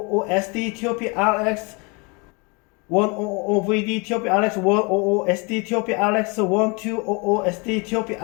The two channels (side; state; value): right; quieter; 30.3 dB